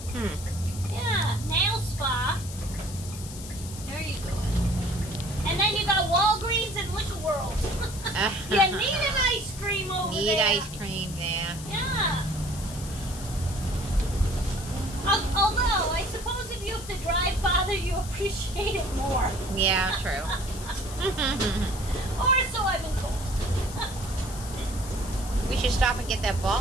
yeah, nail spa. There you go. And then you got Walgreens and Liquor World. You need an ice cream over there. Need ice cream there. Yeah. Although, I suppose if you have to drive farther, you appreciate it more. Yeah, true. Or so I've been told. We should stop and get that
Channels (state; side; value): noise; left; hiss, 13 dB below the sound